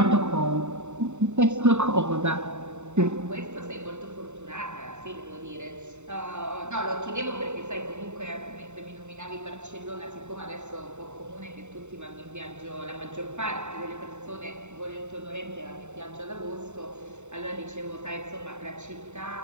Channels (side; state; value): left; late; 0.83 ms